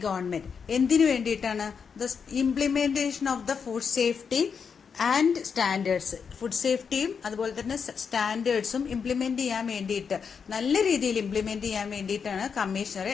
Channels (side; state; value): right; quieter; 6.2 dB